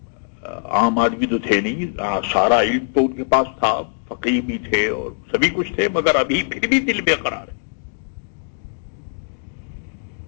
عام آدمی تو تھے نہیں، سارا علم تو ان کے پاس تھا، فقیہ بھی تھے اور سبھی کچھ تھے، مگر ابھی پھر بھی دل بے قرار ہے۔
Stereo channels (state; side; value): silent; right; digital silence